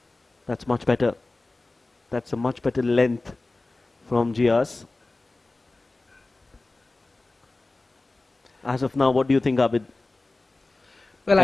That's much better. That's a much better length from Gias. As of now, what do you think, Abid? Well,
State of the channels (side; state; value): right; quieter; 3.1 dB